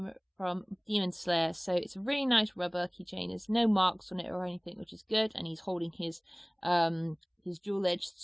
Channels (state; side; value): identical; both; correlation 1.00